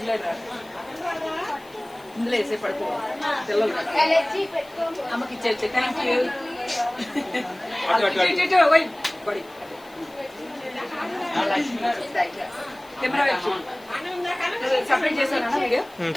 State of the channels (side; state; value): left; noise; hiss, 26 dB below the sound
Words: లేదా ఇందులో వేసే పడుకో పిల్లలు అమ్మకి ఇచ్చేది. Thank you. బడి కెమెరా సపరేట్ చేశానా వీడియో?